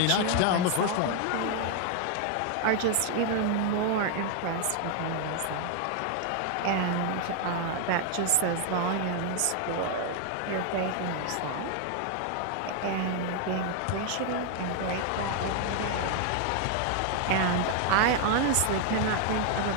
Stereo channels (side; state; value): both; different; correlation 0.00